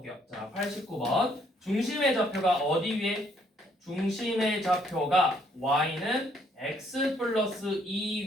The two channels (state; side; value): normal; both; correlation 0.67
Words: 자, 89번. 중심의 좌표가 어디 위에? 중심의 좌표가 Y는 X 플러스